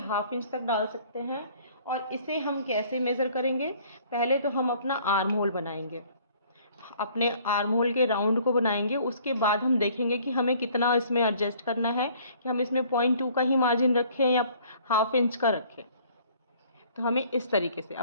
½ इंच तक डाल सकते हैं। और इसे हम कैसे मेज़र करेंगे? पहले तो हम अपना आर्म होल बनाएंगे, अपने आर्म होल के राउंड को बनाएंगे। उसके बाद हम देखेंगे कि हमें कितना इसमें एडजस्ट करना है, कि हम इसमें 0.2 का ही मार्जिन रखें या ½ इंच का रखें। तो हमें इस तरीके से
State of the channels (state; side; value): inverted; both; correlation -0.57